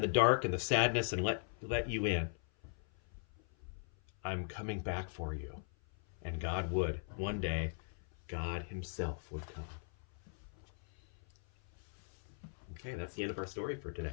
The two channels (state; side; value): silent; right; 52 dB below the other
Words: the dark and the sadness and let you in. I'm coming back for you. And God would. One day, God himself would come. Okay, that's the end of our story for today.